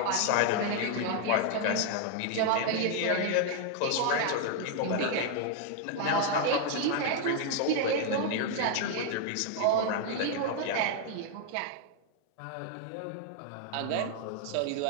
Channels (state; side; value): different; both; correlation 0.00